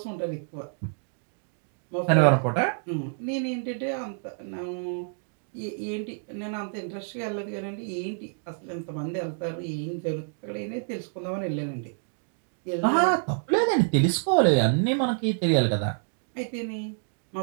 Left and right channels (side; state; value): left; silent; digital silence